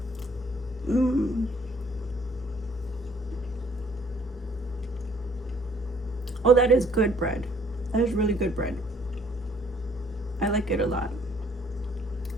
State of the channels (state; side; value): normal; both; correlation 0.60